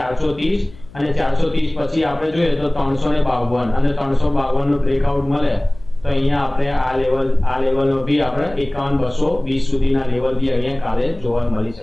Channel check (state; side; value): noise; left; hum, 21 dB below the sound